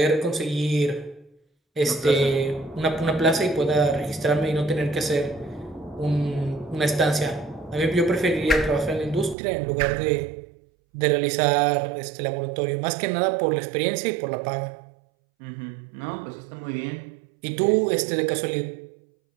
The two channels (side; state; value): left; drops out; at 9.3 s